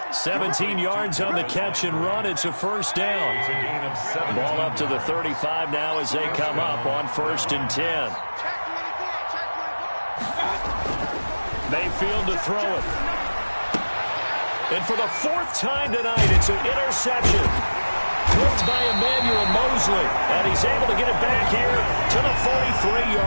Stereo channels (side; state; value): both; inverted; correlation -1.00